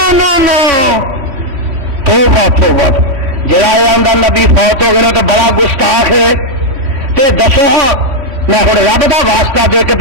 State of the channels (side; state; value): left; late; 3.1 ms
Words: نو توبہ جڑا آندا نبی فوت ہو گئے تو بڑا گستاخ ہے تے دسو ہاں میں ہوں رب دا واسطہ دے کے